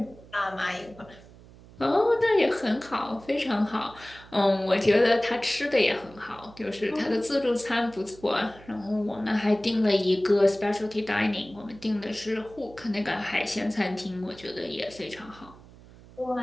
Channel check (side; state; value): right; noise; hum, 21 dB below the sound